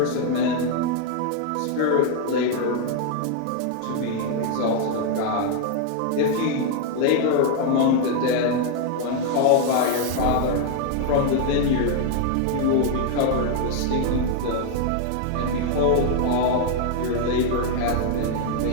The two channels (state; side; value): different; both; correlation 0.00